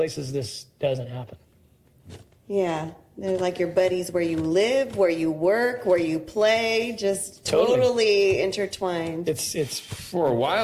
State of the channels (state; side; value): identical; both; correlation 1.00